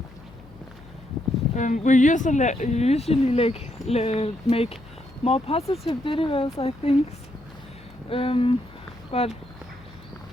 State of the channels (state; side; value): noise; left; hum, 22 dB below the sound